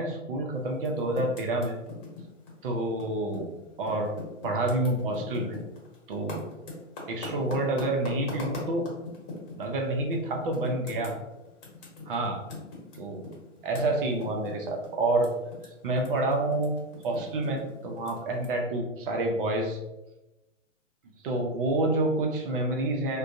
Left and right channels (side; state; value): both; normal; correlation 0.13